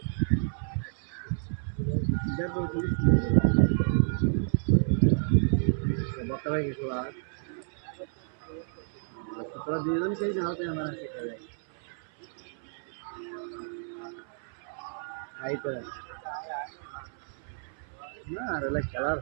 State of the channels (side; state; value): left; silent; 58 dB below the other